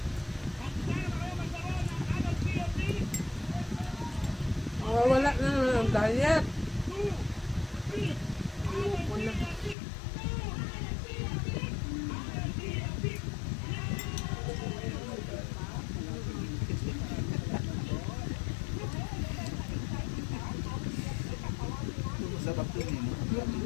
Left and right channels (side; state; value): right; drops out; at 9.8 s